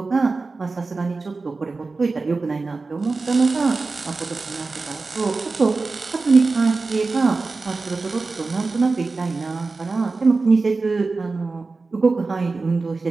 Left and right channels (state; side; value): quieter; left; 3.8 dB